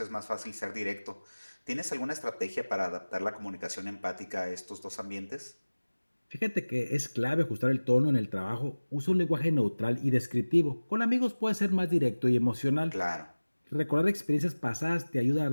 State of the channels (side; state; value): both; inverted; correlation -1.00